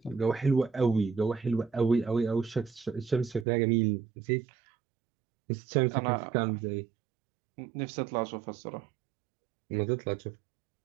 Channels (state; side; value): drops out; left; at 3.5 s